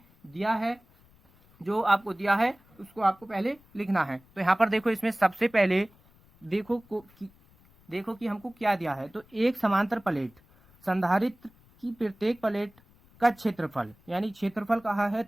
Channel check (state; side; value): noise; left; rumble, 29 dB below the sound